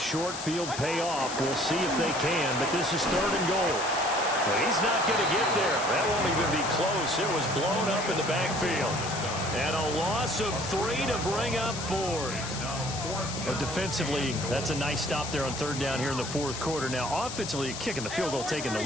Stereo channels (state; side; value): noise; left; hiss, 8 dB below the sound